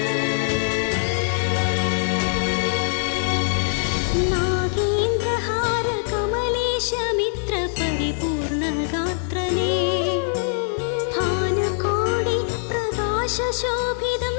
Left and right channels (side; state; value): right; silent; digital silence